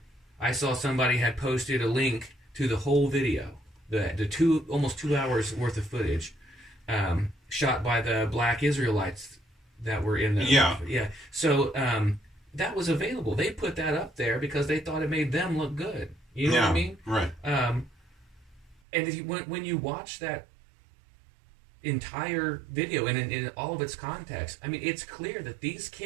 I saw somebody had posted a link to the whole video, the almost 2 hours worth of footage, shot by the black Israelites that were in the So that was available. They put that up there because they thought it made them look good. You know what I mean? Right. And if you when you watch that entire video and in all of its context, I mean, it's clear that these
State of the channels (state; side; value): drops out; left; at 18.8 s